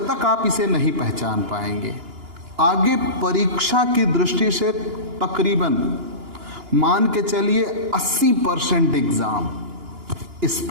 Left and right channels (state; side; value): late; left; 2.9 ms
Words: तक आप इसे नहीं पहचान पाएंगे, आगे परीक्षा की दृष्टि से तकरीबन मान के चलिए 80% एग्जाम इस